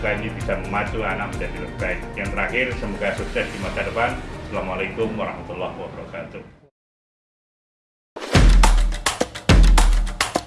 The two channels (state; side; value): identical; both; correlation 1.00